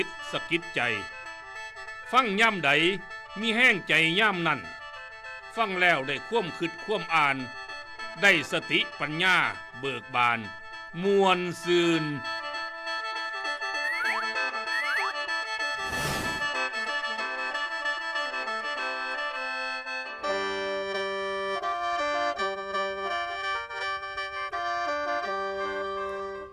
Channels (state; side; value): identical; both; correlation 1.00